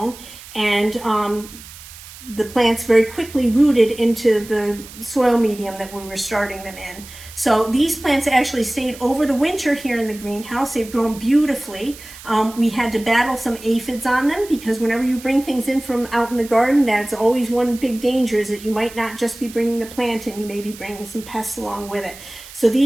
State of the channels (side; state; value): right; noise; hiss, 17 dB below the sound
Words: and the plants very quickly rooted into the soil medium that we were starting them in. So these plants actually stayed over the winter here in the greenhouse. They've grown beautifully. We had to battle some aphids on them because whenever you bring things in from out in the garden, that's always one big danger, is that you might not just be bringing the plant in, you may be bringing some pests along with it. So